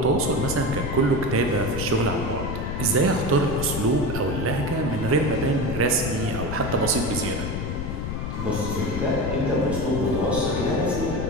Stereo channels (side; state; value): left; noise; rumble, 4 dB below the sound